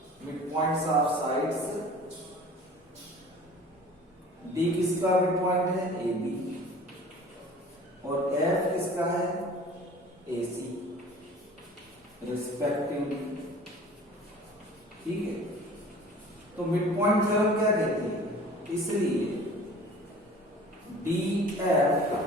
sides, D किसका मिड पॉइंट है, AB, और F किसका है, AC रिस्पेक्टिवली। ठीक है, तो मिड पॉइंट थ्योरम क्या कहती है, इसलिए DF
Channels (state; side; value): normal; both; correlation 0.45